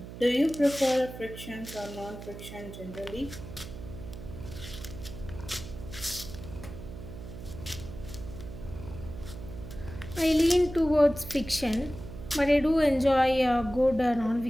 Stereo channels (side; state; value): right; noise; hum, 12 dB below the sound